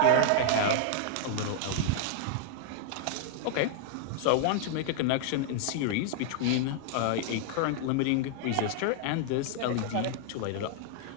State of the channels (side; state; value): both; different; correlation -0.01